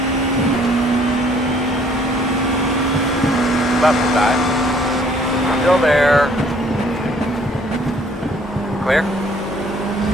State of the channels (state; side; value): normal; both; correlation 0.60